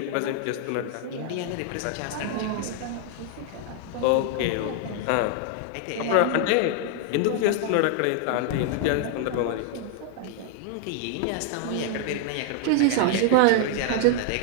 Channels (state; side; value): different; both; correlation 0.00